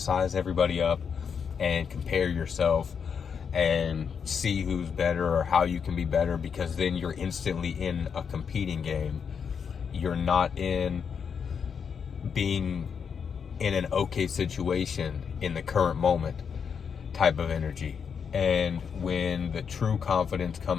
everybody up and compare yourself and see who's better or how you can be better, because then you're instantly in a competing game. You're not in being in an okay situation in the current moment type of energy. And when the true confidence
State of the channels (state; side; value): quieter; right; 6.7 dB